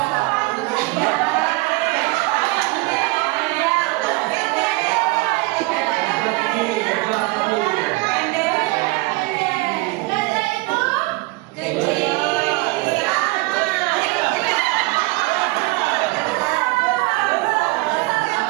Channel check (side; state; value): left; quieter; 23.5 dB